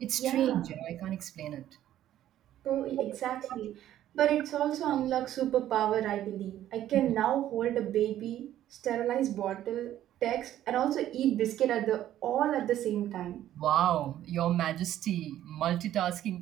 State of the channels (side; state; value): left; quieter; 12.3 dB